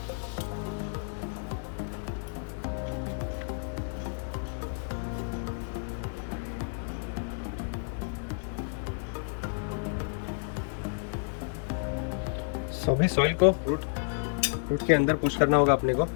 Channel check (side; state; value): right; silent; digital silence